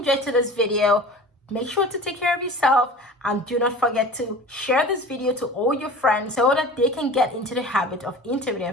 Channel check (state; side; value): normal; both; correlation 0.38